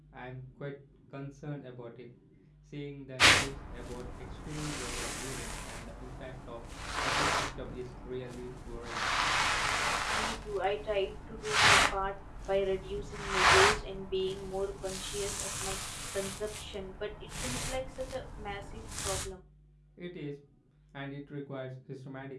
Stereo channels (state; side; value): identical; both; correlation 1.00